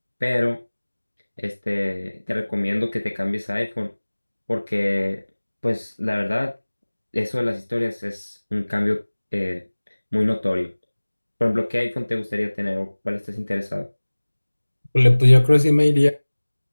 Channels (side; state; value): both; inverted; correlation -1.00